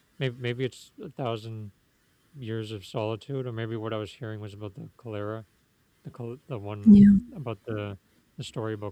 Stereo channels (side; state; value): both; identical; correlation 1.00